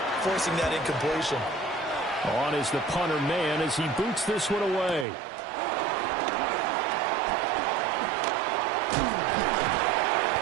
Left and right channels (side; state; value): left; drops out; at 5.1 s